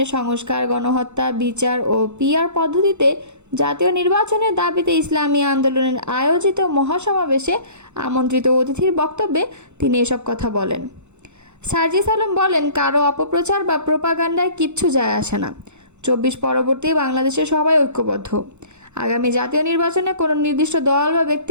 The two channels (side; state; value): left; late; 0.83 ms